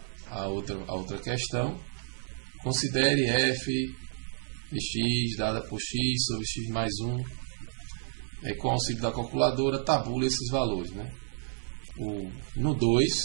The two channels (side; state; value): left; silent; 57 dB below the other